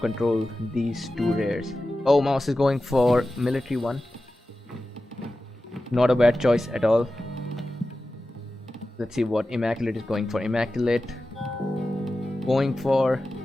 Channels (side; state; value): both; normal; correlation 0.94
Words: these two rares. Oh, Mouse is going for military 1. Not a bad choice at all. Let's see what Immaculate is going for. Immaculate going for